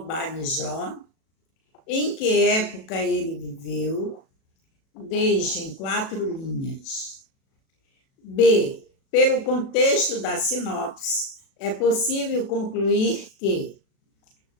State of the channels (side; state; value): right; late; 37 ms